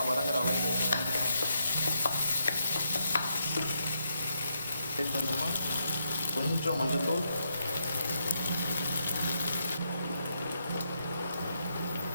வதங்குற அளவுக்கு டேஸ்ட் பண்ணோம்னா கொஞ்சம் மஞ்சள்தூள்,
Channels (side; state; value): both; inverted; correlation -0.80